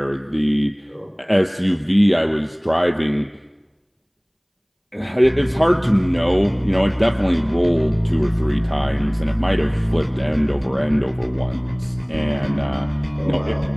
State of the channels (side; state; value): both; identical; correlation 1.00